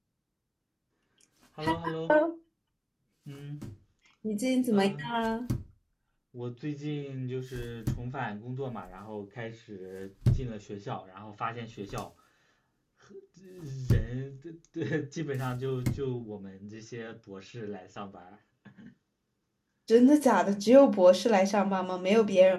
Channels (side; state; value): both; identical; correlation 1.00